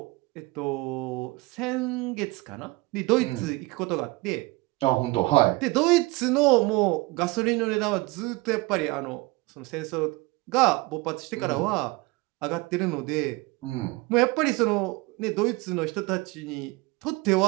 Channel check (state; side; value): quieter; left; 23.1 dB